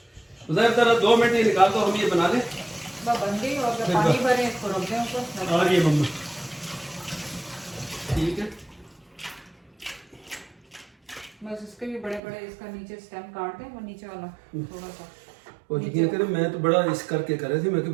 जरा 2 मिनट ही निकाल दो, हम ये बना लें। बन गई और पानी भरे इसको रख दें ऊपर। आ रही है मम्मा, ठीक है। बस इसके भी बड़े बड़े इसका नीचे स्टेम काट दें, वो नीचे वाला थोड़ा सा। और यकीन करें मैं तो बड़ा इस करके कर रहे थे, मैं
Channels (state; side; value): drops out; left; at 12.2 s